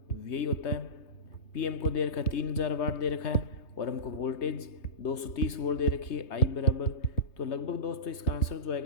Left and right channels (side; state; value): right; late; 3.2 ms